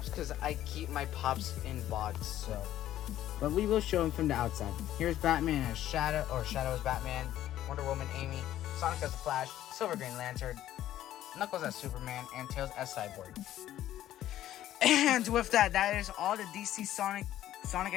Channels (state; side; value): quieter; right; 12.8 dB